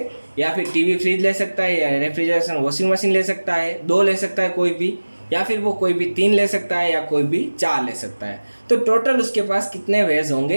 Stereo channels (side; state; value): both; inverted; correlation -1.00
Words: या फिर टीवी फ्रिज ले सकता है, या रेफ्रिजरेशन वॉशिंग मशीन ले सकता है, 2 ले सकता है कोई भी, या फिर वो कोई भी 3 ले सकता है, या कोई भी 4 ले सकता है। तो टोटल उसके पास कितने वेज